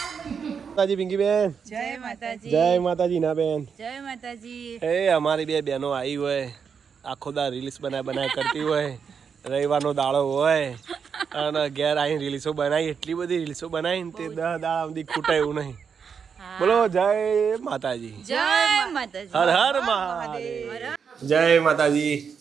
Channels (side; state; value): left; quieter; 6.5 dB